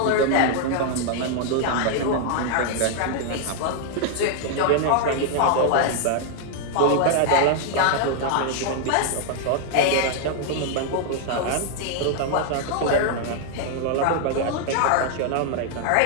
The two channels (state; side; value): different; both; correlation 0.00